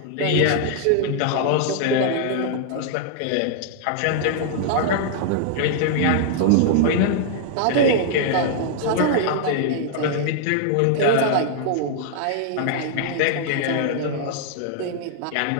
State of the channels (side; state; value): both; different; correlation -0.01